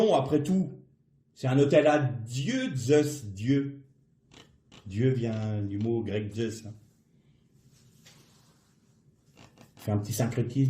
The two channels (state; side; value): identical; both; correlation 1.00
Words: après tout. C'est un hôtel à Dieu, Zeus, Dieu. Dieu vient du mot grec Zeus. Hein. On fait un petit